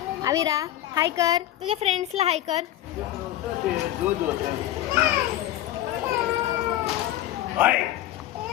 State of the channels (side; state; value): right; quieter; 13.6 dB